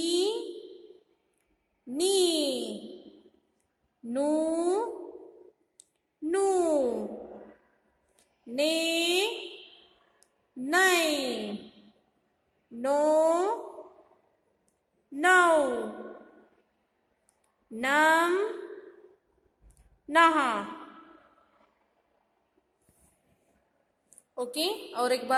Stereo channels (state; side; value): identical; both; correlation 1.00